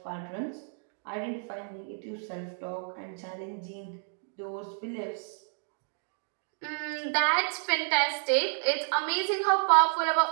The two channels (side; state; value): left; silent; 57 dB below the other